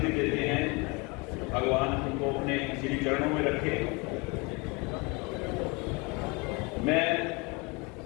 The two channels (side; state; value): right; quieter; 28.3 dB